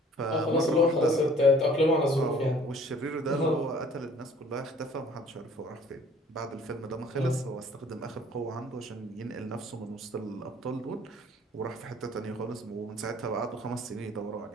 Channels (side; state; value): both; normal; correlation 0.54